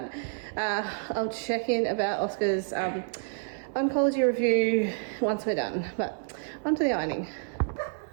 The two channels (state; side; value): silent; left; 59 dB below the other